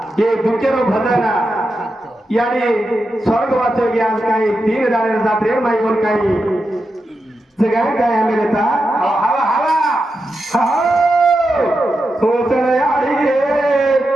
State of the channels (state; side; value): normal; both; correlation 0.88